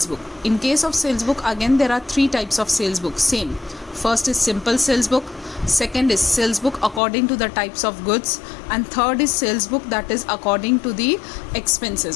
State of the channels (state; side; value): drops out; right; at 7.0 s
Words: book. In case of sales book, again there are three types of sales book. Same, first is simple sales book, second is sales book according to the types of goods, and third is sales book that is according to the